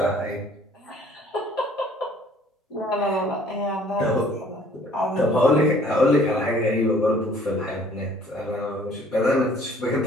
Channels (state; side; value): normal; both; correlation 0.57